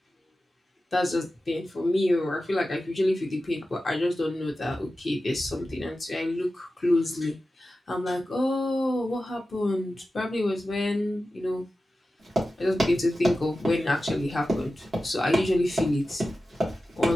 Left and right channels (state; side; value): normal; both; correlation 0.94